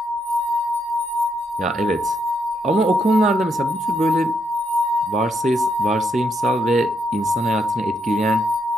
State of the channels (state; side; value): normal; both; correlation 0.77